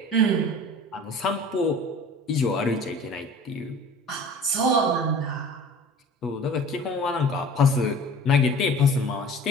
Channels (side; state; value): both; normal; correlation 0.42